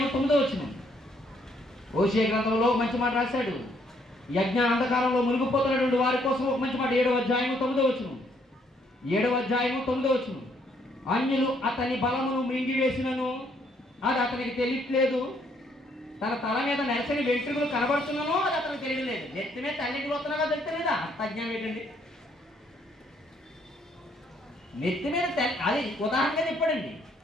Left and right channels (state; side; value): normal; both; correlation 0.69